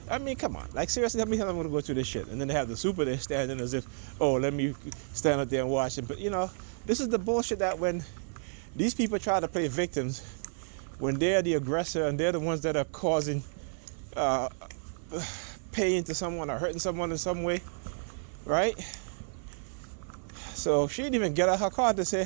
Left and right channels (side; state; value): left; silent; 57 dB below the other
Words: I mean, come on. Like, seriously, how many times I'm going to go through this shit? And then they have the super there standing as if, oh, let me stand up there and watch it. But, this is the bullshit that when these people try to play victims, when they're the aggressor and they're the ones that are causing pain to someone or hurting someone in some way, right? So she didn't even get out her car to say